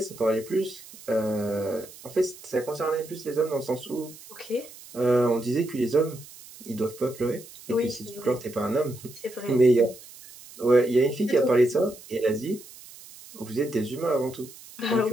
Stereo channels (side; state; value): right; noise; hiss, 19 dB below the sound